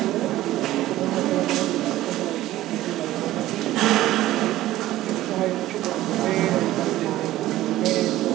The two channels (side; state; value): left; quieter; 15.2 dB